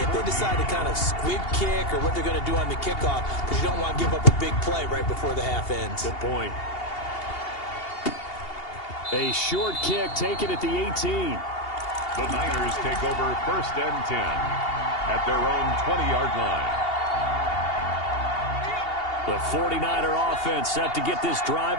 if they decide to kind of squib kick or what they're going to do on the kickoff, because you don't want to give up a big play right before the half ends. Good point. A short kick taken at the 18. The Niners take over first and 10 at their own 20-yard line. The 49er offense set to get this drive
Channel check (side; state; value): right; late; 2.8 ms